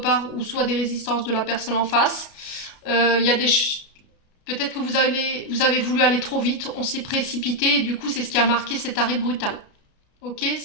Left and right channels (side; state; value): right; late; 33 ms